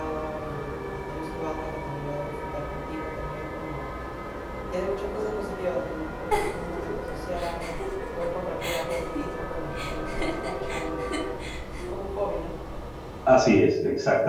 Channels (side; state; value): both; identical; correlation 1.00